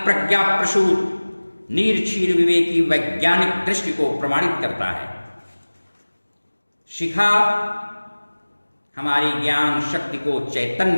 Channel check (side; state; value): both; inverted; correlation -1.00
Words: प्रज्ञा प्रसूत नीरक्षीर विवेकी वैज्ञानिक दृष्टि को प्रमाणित करता है। शिखा हमारी ज्ञान शक्ति को